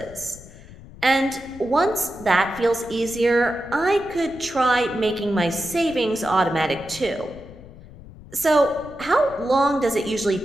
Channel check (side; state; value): left; noise; rumble, 18 dB below the sound